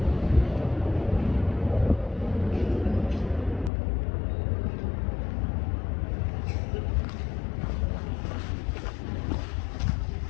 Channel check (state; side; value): drops out; right; at 3.7 s